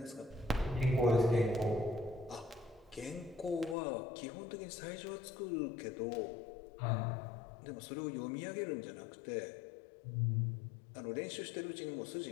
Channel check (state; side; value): drops out; right; at 3.8 s